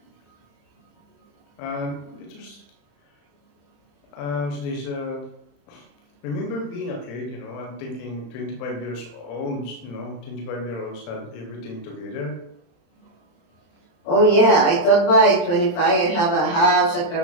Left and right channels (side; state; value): right; late; 35 ms